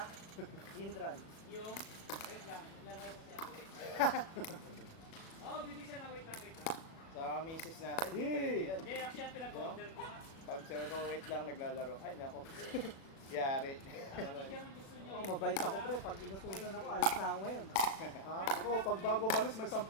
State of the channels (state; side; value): late; right; 37 ms